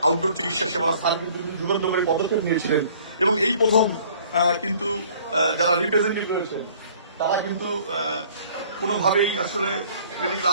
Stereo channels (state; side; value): inverted; both; correlation -0.54